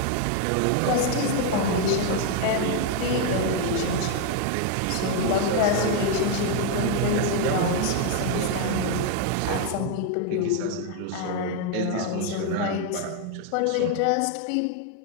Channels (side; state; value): both; different; correlation 0.01